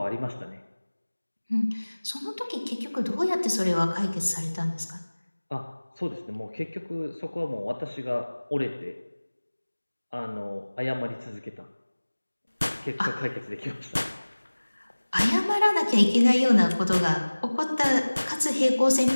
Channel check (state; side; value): inverted; both; correlation -1.00